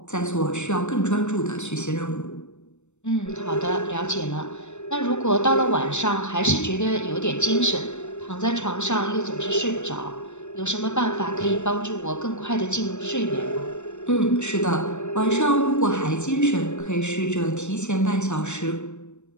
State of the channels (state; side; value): late; right; 0.83 ms